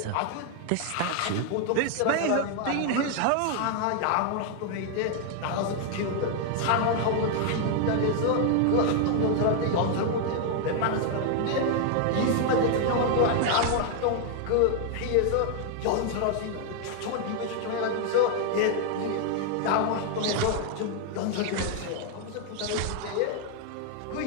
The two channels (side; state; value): both; different; correlation 0.00